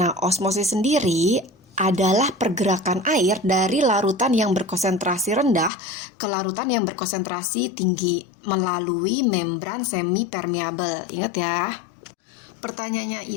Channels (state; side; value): drops out; right; at 5.7 s